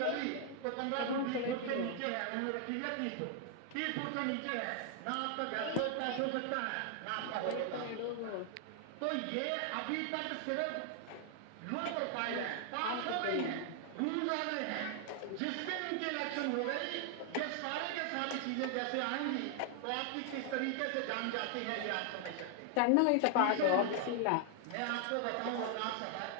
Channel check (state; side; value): different; both; correlation 0.00